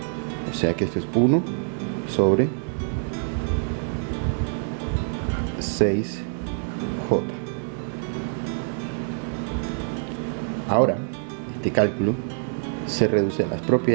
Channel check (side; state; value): left; silent; 61 dB below the other